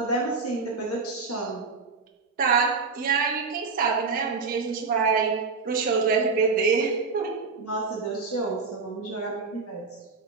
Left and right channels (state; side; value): quieter; left; 4.5 dB